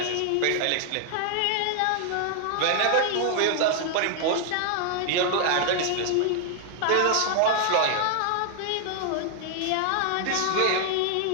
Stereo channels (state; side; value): different; both; correlation 0.00